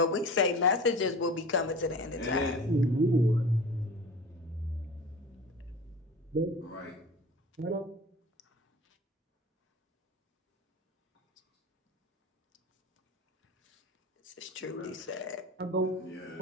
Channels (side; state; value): both; normal; correlation 0.36